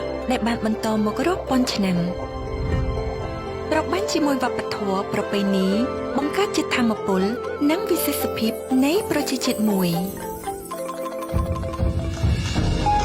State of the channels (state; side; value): identical; both; correlation 1.00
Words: ដែលបានបន្តមករាប់ពាន់ឆ្នាំប្របាញ់ជាមួយវប្បធម៌ប្រពៃណីបង្កើតជាធម៌ពលនិងវិសេសភាពនៃប្រជាជាតិមួយ